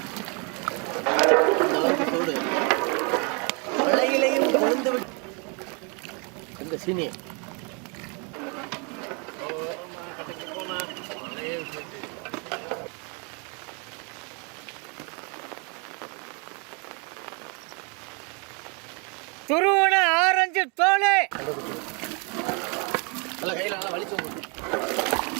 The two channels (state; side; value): quieter; left; 34.1 dB